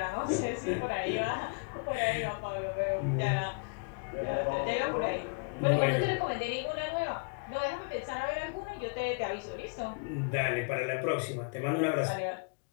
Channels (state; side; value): quieter; right; 35.8 dB